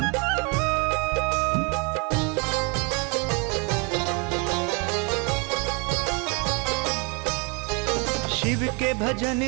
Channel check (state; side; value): quieter; left; 32.6 dB